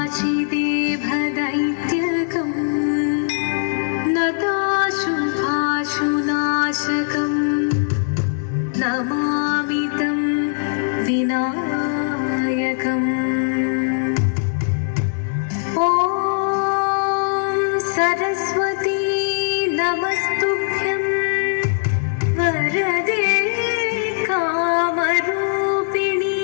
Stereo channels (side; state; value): right; silent; digital silence